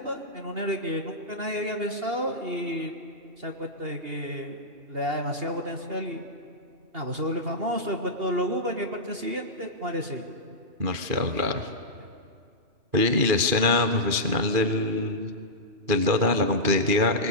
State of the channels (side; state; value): left; late; 2.5 ms